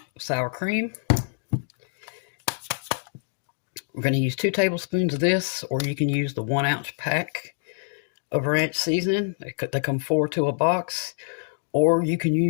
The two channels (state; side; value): silent; right; digital silence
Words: of sour cream. We're going to use 2 tablespoons of this, or you can use the 1-ounce pack of ranch seasoning. They come 4 to a box, or you can